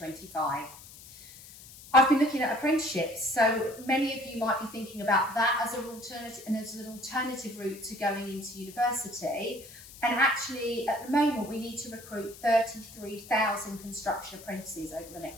I've been looking at apprenticeships, so many of you might be thinking about that as an alternative route to going into university. And actually, at the moment, we need to recruit 33,000 construction apprentices over the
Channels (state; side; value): noise; left; hiss, 18 dB below the sound